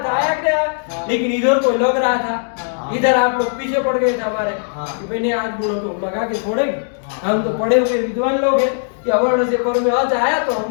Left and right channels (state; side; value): silent; right; 67 dB below the other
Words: आया क्या? लेकिन इधर कोई लग रहा था, इधर आप लोग पीछे पड़ गए थे हमारे कि मैंने आज गुणों को लगा के छोड़ेंगे, हम तो पढ़े हुए विद्वान लोग हैं कि अवर्ण से पर में आज आया तो